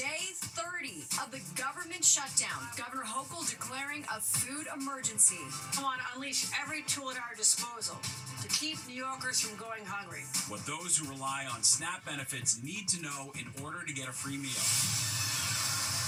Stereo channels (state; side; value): identical; both; correlation 1.00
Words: 30 of the government shutdown. Governor Hochul declaring a food emergency. We want to unleash every tool at our disposal to keep New Yorkers from going hungry. What those who rely on SNAP benefits need to know in order to get a free meal.